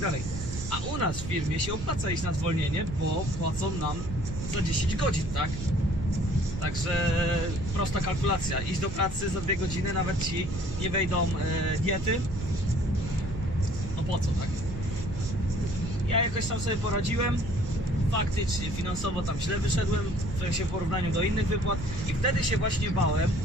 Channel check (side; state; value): right; noise; rumble, 8 dB below the sound